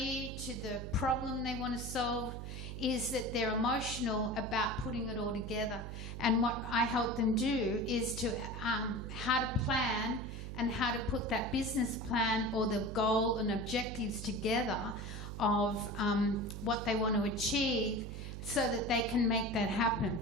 to the problem they want to solve, is that they're emotional about putting it all together. And what I help them do is to how to plan and how to put that business plan or the goal and objectives together of what they want to achieve so that they can make that happen.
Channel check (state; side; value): noise; right; hum, 7 dB below the sound